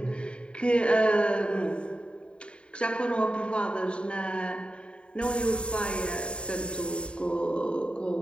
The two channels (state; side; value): late; right; 0.055 ms